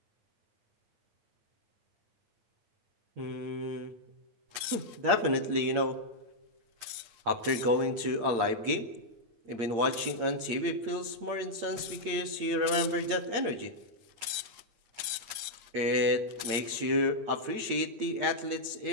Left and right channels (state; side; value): late; left; 8.7 ms